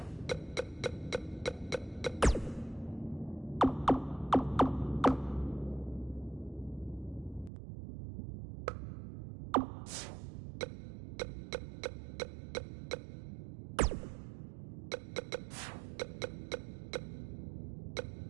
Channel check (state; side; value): drops out; left; at 7.5 s